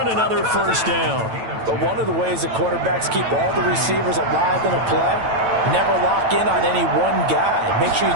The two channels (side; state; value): left; late; 9.0 ms